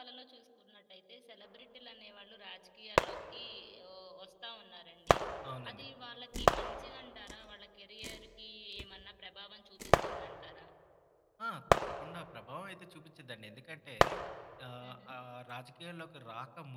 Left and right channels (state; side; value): identical; both; correlation 1.00